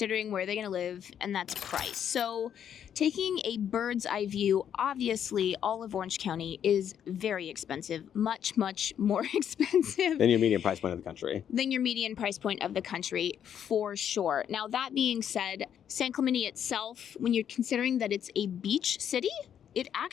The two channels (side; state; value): right; quieter; 9.1 dB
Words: where they're going to live, and that's price. So taking a bird's eye view, obviously all of Orange County is very expensive, much, much more expensive than your median price point of the country. For sure. Now that being said, San Clemente itself, when you're considering that it's a beach city, it